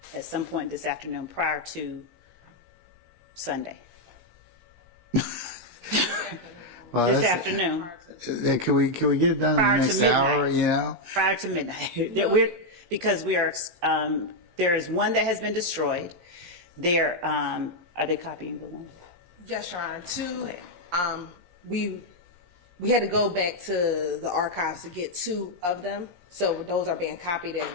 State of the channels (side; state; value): left; late; 17 ms